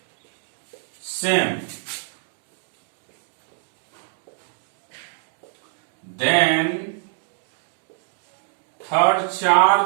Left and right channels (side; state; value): left; silent; 61 dB below the other